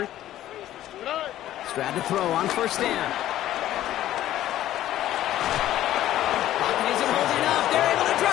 Stroud to throw on 1st down. Pocket isn't holding up. They're able to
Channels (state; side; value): quieter; right; 13.2 dB